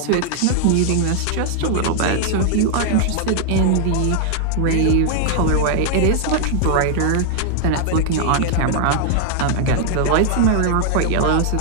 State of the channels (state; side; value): different; both; correlation 0.00